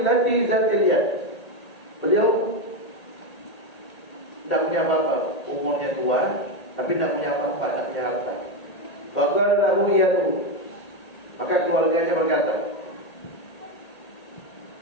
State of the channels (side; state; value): right; late; 1.8 ms